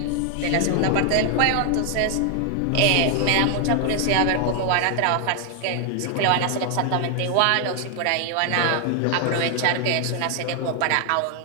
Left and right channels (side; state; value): both; different; correlation 0.00